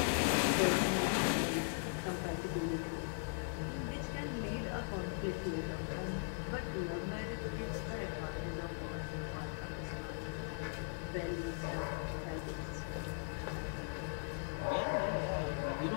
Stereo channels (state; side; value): silent; right; digital silence